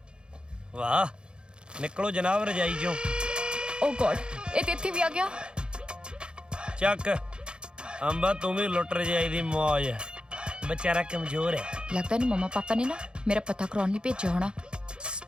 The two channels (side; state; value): left; late; 0.051 ms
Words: ਵਾਹ ਨਿਕਲੋ ਜਨਾਬ ਰਜਾਈ ਚੋਂ। ਓ ਗॉड, ਇਹ ਤੇ ਇੱਥੇ ਵੀ ਆ ਗਿਆ। ਚੱਕ ਅੰਬਾ, ਤੂੰ ਵੀ ਲੁੱਟ ਰਜਾਈ ਦੀ ਮੌਜ। बेचारा कमजोर है। लगता नहीं मम्मा पापा ने ना मेरा पता करवाने लिए भेजा होना।